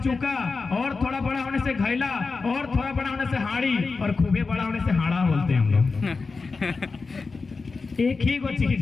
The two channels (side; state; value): right; quieter; 4.3 dB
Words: और थोड़ा बड़ा होने से घैला, और थोड़ा बड़ा होने से हाड़ी, और खूबे बड़ा होने से हाड़ा बोलते हैं हम लोग। एक ही वो चीज